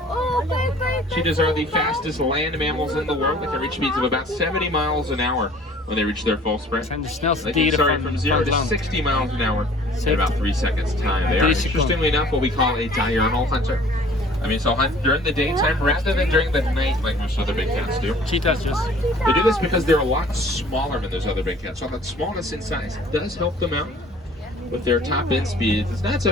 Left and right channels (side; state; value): both; normal; correlation 0.51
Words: Oh, bye. Cheetahs are the fastest land mammals in the world. They can reach speeds of about 70 miles an hour when they reach their full sprint. Zijn de snelste They can dieren start from 0 van to het land. 60 miles an hour in about 3 seconds time. They are, 3 seconden. interestingly enough, what we call a diurnal hunter. I mean, so hunt during the daytime rather than during the night like most other big cats do. Cheetahs just. They do this because they're a lot smaller than those other big cats. So that smallness in size does help them out with their top end speeds. It's not so